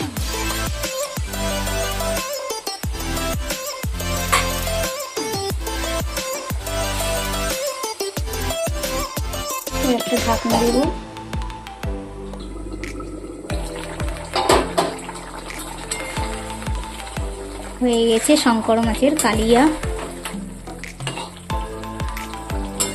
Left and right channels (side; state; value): both; identical; correlation 1.00